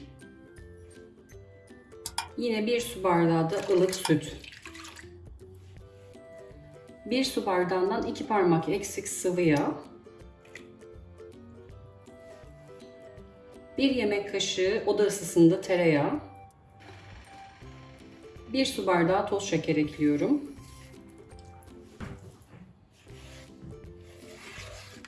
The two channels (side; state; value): both; identical; correlation 1.00